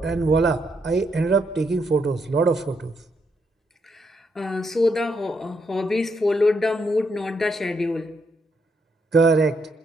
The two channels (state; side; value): normal; both; correlation 0.77